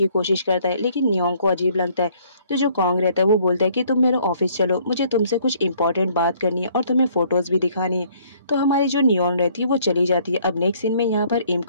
कोशिश करता है, लेकिन नियोन को अजीब लगता है। तो जो कॉन्ग रहता है वो बोलता है कि तुम मेरे ऑफिस चलो, मुझे तुमसे कुछ इंपॉर्टेंट बात करनी है और तुम्हें फोटोज भी दिखानी है। तो हमारी जो नियोन रहती है वो चली जाती है। अब नेक्स्ट सीन में यहाँ पर इम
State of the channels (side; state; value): both; inverted; correlation -0.61